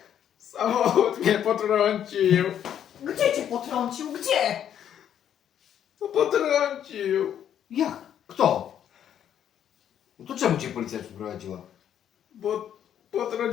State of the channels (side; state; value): right; quieter; 9.7 dB